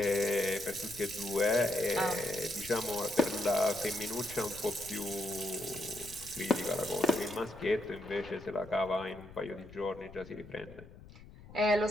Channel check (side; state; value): left; noise; rumble, 18 dB below the sound